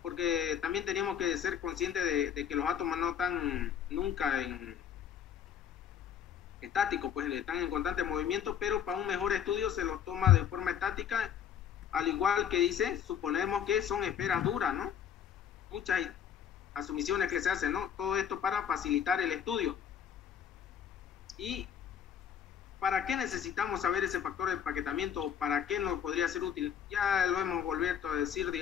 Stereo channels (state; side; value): quieter; right; 8.7 dB